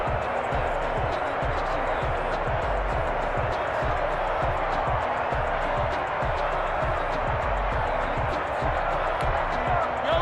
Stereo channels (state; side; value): identical; both; correlation 1.00